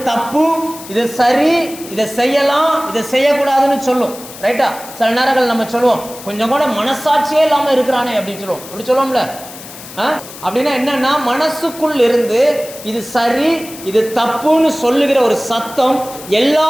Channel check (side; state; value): left; noise; hiss, 15 dB below the sound